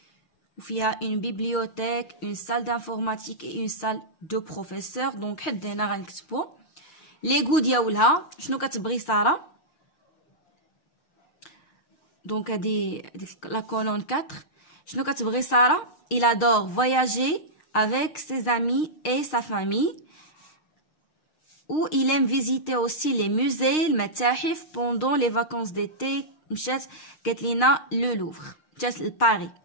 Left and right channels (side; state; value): right; late; 6.5 ms